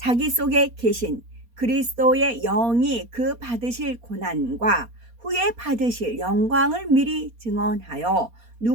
속에 계신 그리스도의 영이 그 받으실 고난과 후에 받으실 영광을 미리 증언하여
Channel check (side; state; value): left; late; 4.2 ms